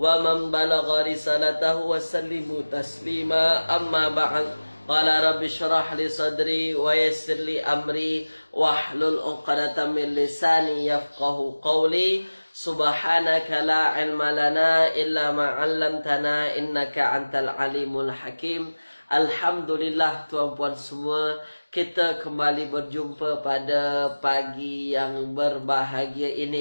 man balagha risalatahu wa sallimu taslima. Amma ba'd. Qala rabbi syrah li sadri wa yassir li amri wahlul 'uqdatam min lisani yafqahu qawli. Subhanaka la ilma lana illa ma 'allamtana innaka antal alimul hakim. Alhamdulillah tuan-puan semua, kita kembali berjumpa pada pagi yang berbahagia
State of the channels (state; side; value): inverted; both; correlation -1.00